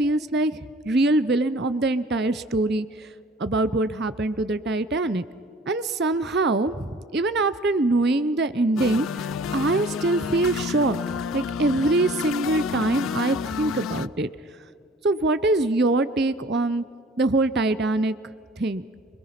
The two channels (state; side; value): normal; both; correlation 0.50